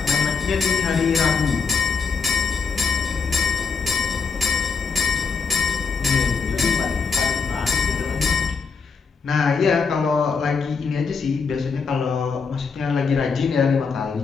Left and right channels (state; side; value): quieter; right; 5.2 dB